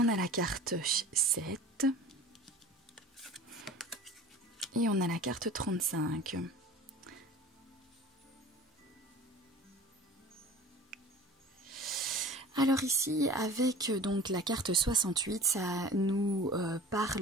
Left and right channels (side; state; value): both; normal; correlation 0.41